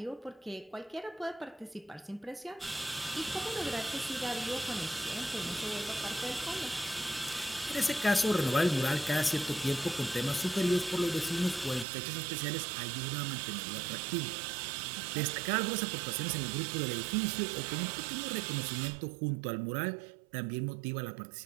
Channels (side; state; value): left; drops out; at 11.9 s